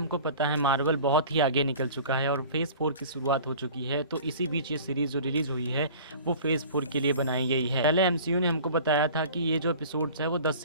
पता है, मार्वल बहुत ही आगे निकल चुका है और फेज़ 4 की शुरुआत हो चुकी है। तो इसी बीच ये सीरीज़ जो रिलीज़ हुई है वो फेज़ 4 के लिए बनाई गई है। पहले एमसीयू ने हमको बताया था कि ये जो एपिसोड्स है वो 10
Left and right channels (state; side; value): inverted; both; correlation -0.43